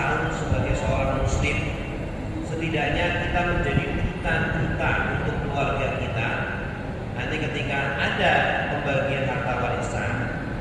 sebagai seorang muslim, setidaknya kita menjadi duta untuk keluarga kita. Nanti ketika ada pembagian harta warisan,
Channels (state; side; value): identical; both; correlation 1.00